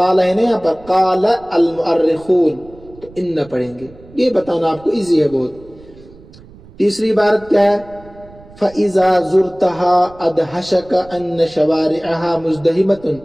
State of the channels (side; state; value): right; noise; rumble, 22 dB below the sound